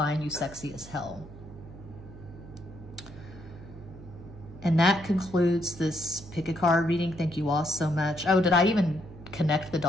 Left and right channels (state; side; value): noise; right; hum, 16 dB below the sound